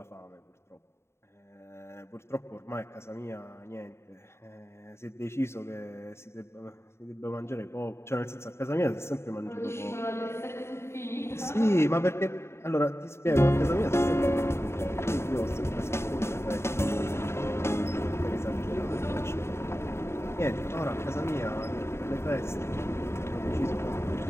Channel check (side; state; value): right; late; 0.13 ms